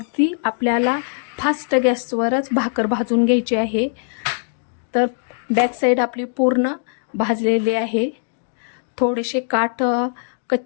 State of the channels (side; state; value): right; silent; digital silence